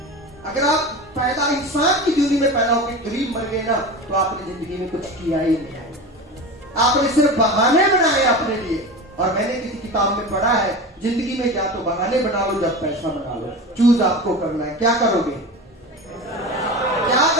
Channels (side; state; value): both; normal; correlation 0.29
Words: अगर आप पैदा इंसान की दुनिया में पैदा होकर गरीब मर गए ना, तो आपने जिंदगी में कुछ किया ही नहीं। आपने सिर्फ बहाने बनाए अपने लिए। और मैंने किसी किताब में पढ़ा है, जिंदगी में या तो बहाने बना लो, जब पैसा बना लो, चूज आपको करना है। क्या करोगे? क्या